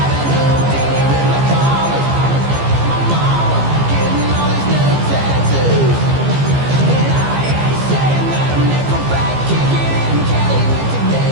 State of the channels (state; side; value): late; left; 15 ms